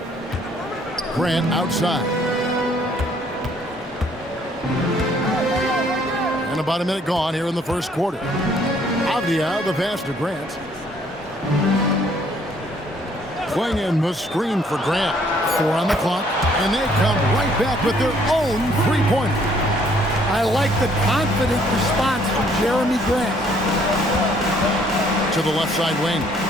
Grant outside. And about a minute gone here in the first quarter. Avdia, the pass to Grant. Swinging the screen for Grant. 4 on the clock, and they come right back with their own three-pointer. I like the confident response from Jeremy Grant. To the left side wing.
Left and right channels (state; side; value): normal; both; correlation 0.63